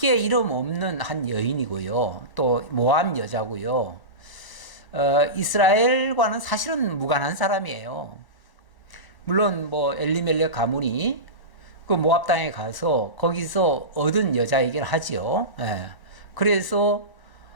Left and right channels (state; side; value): late; right; 1.0 ms